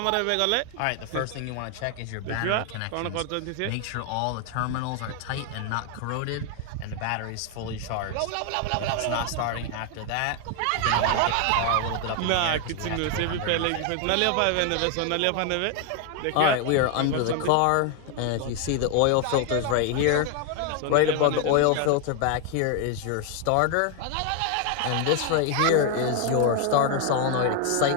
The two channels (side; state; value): both; different; correlation 0.01